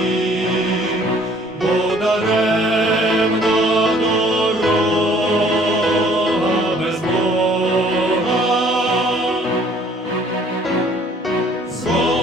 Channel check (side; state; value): both; normal; correlation 0.57